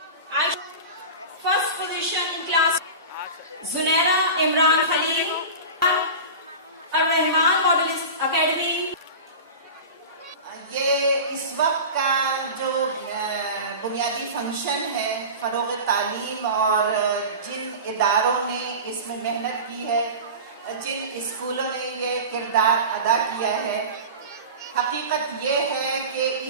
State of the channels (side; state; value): both; inverted; correlation -0.31